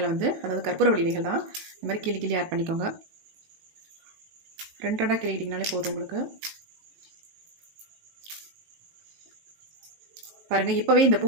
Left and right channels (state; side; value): late; left; 19 ms